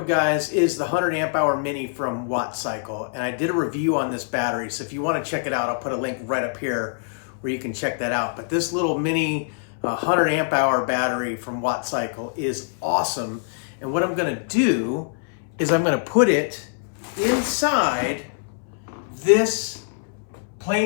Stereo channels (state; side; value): silent; right; 61 dB below the other